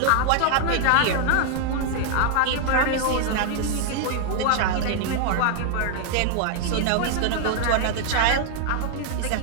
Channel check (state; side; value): different; both; correlation 0.00